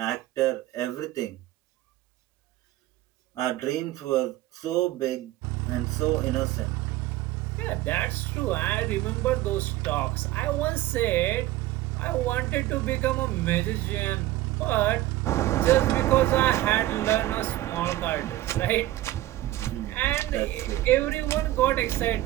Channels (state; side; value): quieter; left; 15.9 dB